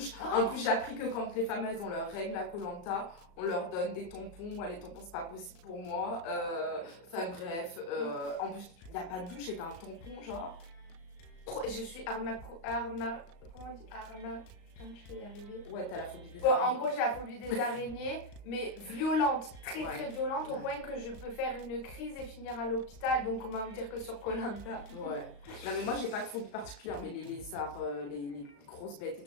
Oh. En plus, j'ai appris que quand les femmes elles ont leurs règles à Koh Lanta, on leur donne des tampons. Moi, les tampons, c'est pas possible pour moi. Enfin, bref. En plus, il n'y a pas de douche et t'as un tampon, genre. Je suis comment on dit je vais y arriver. Ouais, t'as la phobie des Bon, en araignées. gros, j'ai la phobie des araignées, mais violente, très Ouais. très violente, au Ouais. point que je peux faire une crise et finir à l'hôpital. Donc, on va me dire que sur Koh Lanta. Ouais. Non, mais moi, j'ai pas de phobie particulière, mais les lézards, les grosses bêtes et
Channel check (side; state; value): right; late; 36 ms